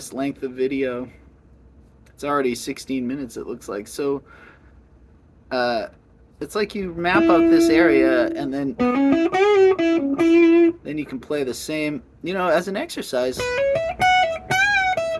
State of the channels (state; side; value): identical; both; correlation 1.00